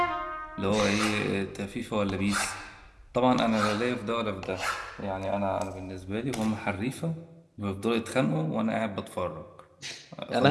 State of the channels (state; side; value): identical; both; correlation 1.00